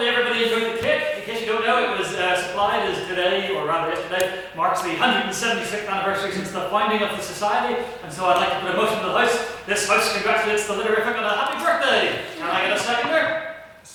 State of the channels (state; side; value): identical; both; correlation 1.00